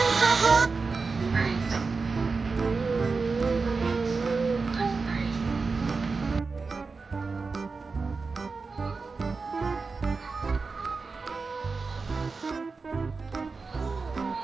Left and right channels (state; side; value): quieter; left; 4.4 dB